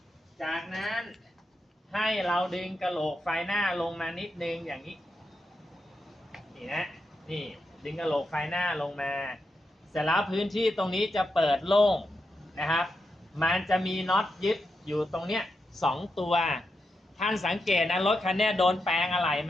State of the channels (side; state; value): both; normal; correlation 0.86